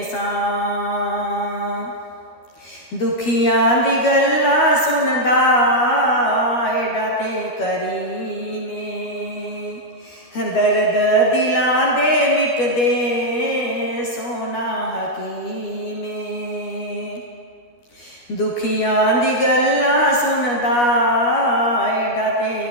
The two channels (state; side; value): late; right; 12 ms